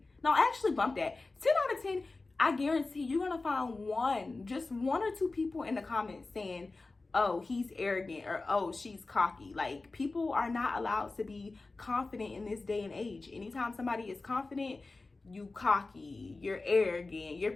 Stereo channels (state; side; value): quieter; right; 3.5 dB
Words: No, actually bump that. 10 out of 10, I guarantee you're gonna find just one or two people in the comments saying, oh, he's arrogant, or oh, she's cocky. Like, people are not allowed to be confident in this day and age. Anytime somebody is confident, you cocky, you're arrogant, you're